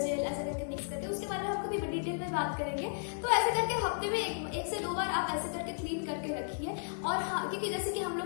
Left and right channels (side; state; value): right; silent; digital silence